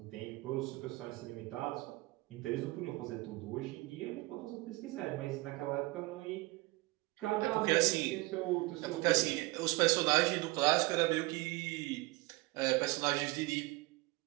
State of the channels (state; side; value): quieter; left; 22.1 dB